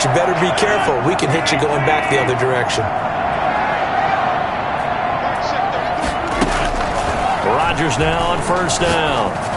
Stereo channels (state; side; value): identical; both; correlation 1.00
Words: you better be careful. We can hit you going back the other direction. Rodgers now on first down.